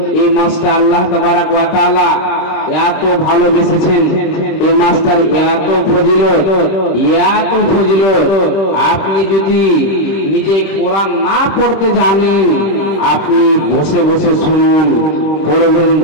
এই মাসটা আল্লাহ তাবারাক ওয়া তাআলা এত ভালোবেসেছেন, এই মাসটার এত ফজিলত, এত ফজিলত। আপনি যদি নিজে কোরআন না পড়তে জানেন, আপনি বসে বসে শুনুন, পড়বেন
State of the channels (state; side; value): late; right; 26 ms